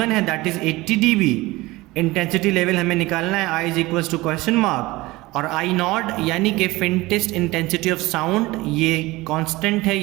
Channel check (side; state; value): left; quieter; 20.3 dB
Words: है that is 80 dB, intensity level हमें निकालना है i is equals to question mark, और आई नॉट यानी कि फेंटेस्ट इंटेंसिटी ऑफ साउंड ये कांस्टेंट है,